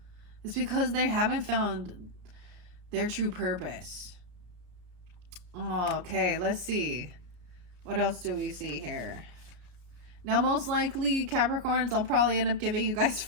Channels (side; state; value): left; late; 34 ms